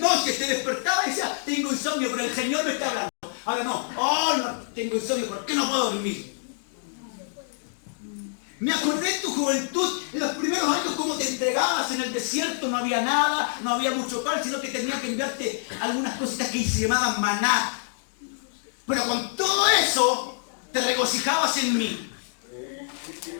te despertaba y decía, tengo insomnio, pero el Señor me está hablando. Ahora no tengo insomnio, ¿por qué no puedo dormir? Me acordé de tu juventud, en los primeros años, cómo te entregabas en el desierto, no había nada, no había mucho pan, sino que tenía que enviarte algunas cositas que se llamaban maná. Pero con todo eso, te regocijabas en mí.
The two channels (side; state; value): right; silent; 61 dB below the other